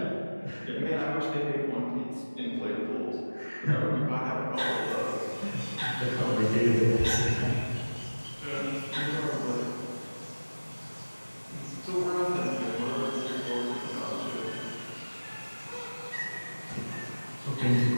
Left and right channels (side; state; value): both; inverted; correlation -1.00